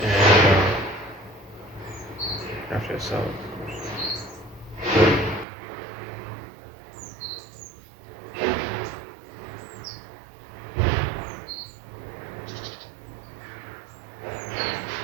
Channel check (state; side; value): drops out; left; at 5.5 s